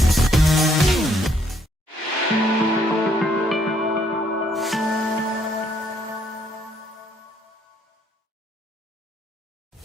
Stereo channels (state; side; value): normal; both; correlation 0.68